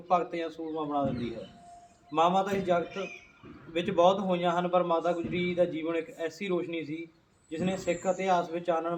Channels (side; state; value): both; identical; correlation 1.00